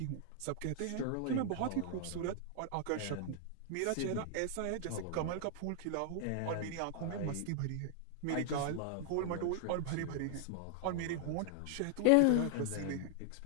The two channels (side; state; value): both; different; correlation -0.01